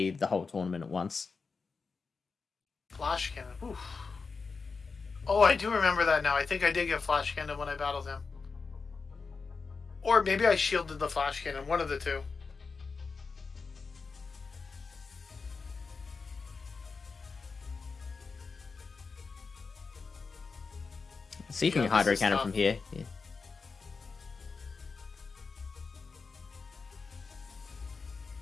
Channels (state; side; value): quieter; right; 4.7 dB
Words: the whole tournament at once. Flash cannon. Oof. Oh, I do remember that now. I think I did get flash cannon when I battled him. Or maybe I shielded the flash cannon. One of the two. See if you can hydro cannon from here. Yeah.